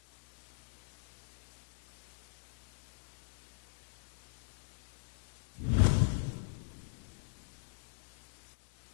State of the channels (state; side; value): silent; right; digital silence